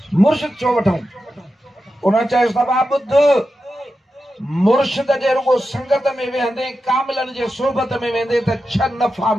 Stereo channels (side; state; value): both; normal; correlation 0.90